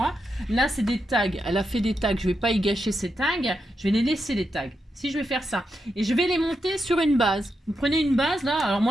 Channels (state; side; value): normal; both; correlation 0.85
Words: Là, c'est des tags. Elle a fait des tags. Je ne vais pas y gâcher ces tags. Je vais les laisser, les tags. Si, je vais faire ça. Et je vais les monter sur une base. Vous prenez une base, là. Alors,